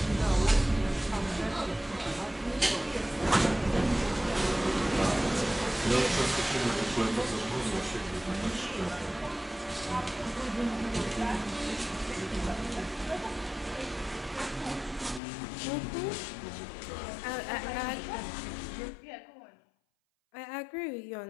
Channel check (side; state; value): right; drops out; at 15.2 s